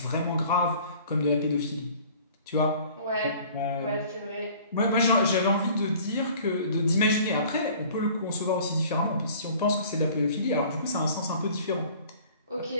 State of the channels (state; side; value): inverted; both; correlation -0.49